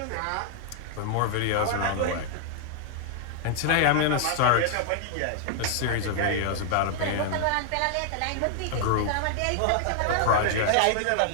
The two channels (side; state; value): both; different; correlation -0.01